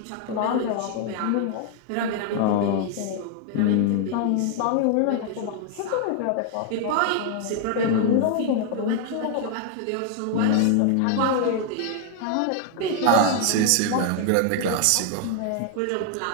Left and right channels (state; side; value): different; both; correlation 0.00